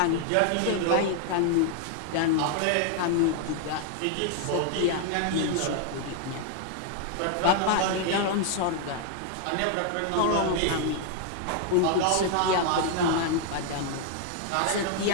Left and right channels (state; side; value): different; both; correlation 0.00